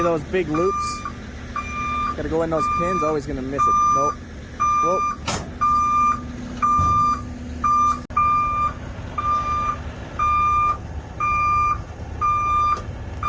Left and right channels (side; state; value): both; identical; correlation 1.00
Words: those big loops? Gotta go in those pins, always gonna miss it. Nope. Whoa.